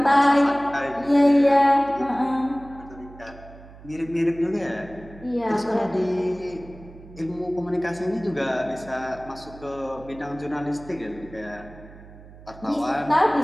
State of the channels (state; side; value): noise; right; hum, 19 dB below the sound